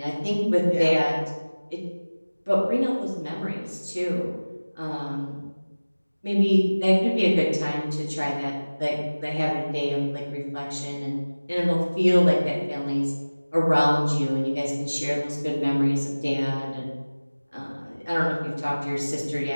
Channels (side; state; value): both; inverted; correlation -1.00